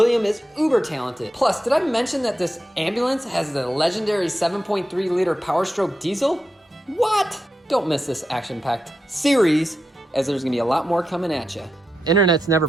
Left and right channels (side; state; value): both; normal; correlation 0.88